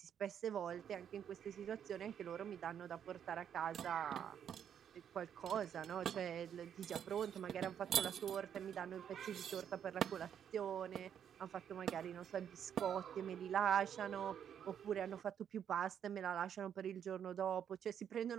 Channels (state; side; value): quieter; left; 8.8 dB